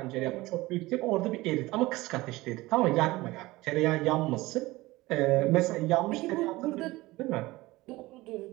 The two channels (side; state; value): left; quieter; 19.7 dB